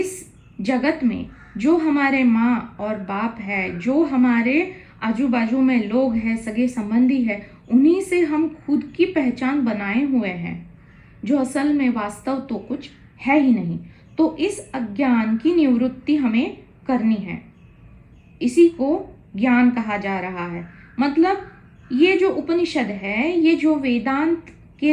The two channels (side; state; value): both; identical; correlation 1.00